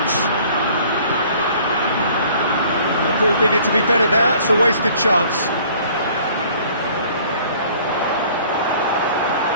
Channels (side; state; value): both; inverted; correlation -0.54